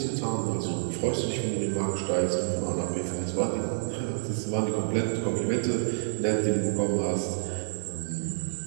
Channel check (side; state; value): left; silent; 59 dB below the other